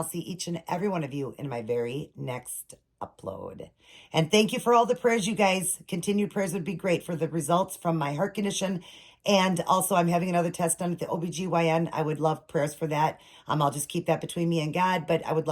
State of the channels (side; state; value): both; identical; correlation 1.00